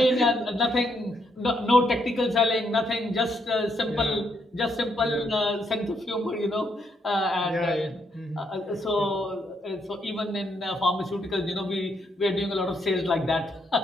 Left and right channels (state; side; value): normal; both; correlation 0.75